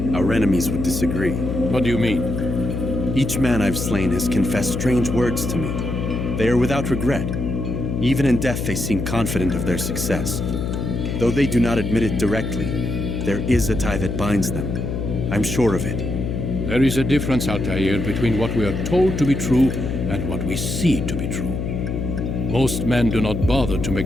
Our enemies would disagree. What do you mean? Each man I've slain has confessed strange words to me. They are without regret. Even in death they seem confident of their success. Though they do not admit it directly, there is a tie that binds them. I'm sure of it. There is a difference, Altair, between what we are told to be true and what we see to be true. Most men do not bother to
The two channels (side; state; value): left; noise; hum, 3 dB below the sound